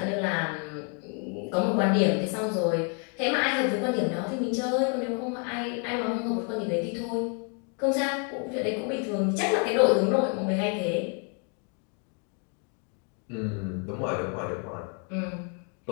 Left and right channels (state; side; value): quieter; right; 38.2 dB